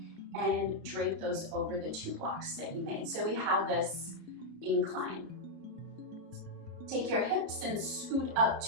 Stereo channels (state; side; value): late; left; 31 ms